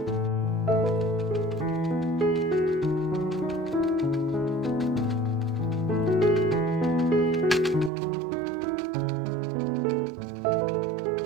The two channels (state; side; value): drops out; left; at 7.9 s